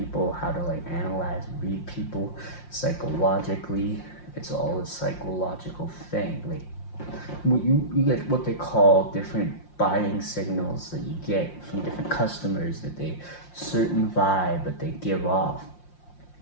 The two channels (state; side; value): late; right; 5.7 ms